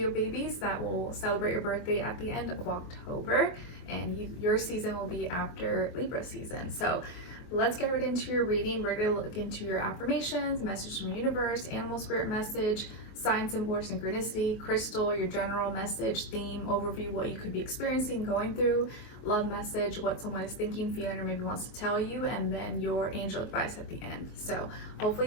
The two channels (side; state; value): right; late; 24 ms